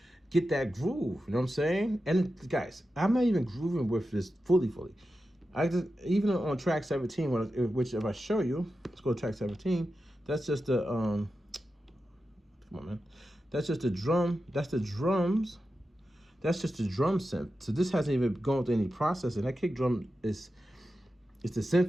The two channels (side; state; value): both; normal; correlation 0.91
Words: get that groove. You know what I'm saying? And guys, I'm not even grooving with this fully. I just, even on track 17, which if I show you, let's go to track 17. That's just the come on, man. That's just the drum. That's the drums. That's just the drum synth. So this hasn't even gone through any processing. That kick drum is the